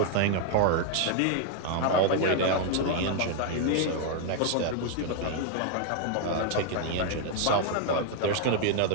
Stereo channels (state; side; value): different; both; correlation 0.00